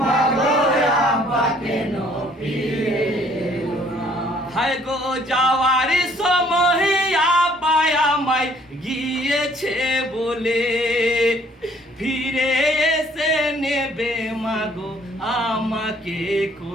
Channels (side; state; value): both; normal; correlation 0.60